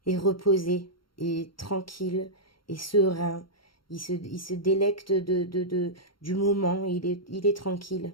est reposé, et tranquille, et serein. Il se délecte du moment, il est tranquille.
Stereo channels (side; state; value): right; late; 0.73 ms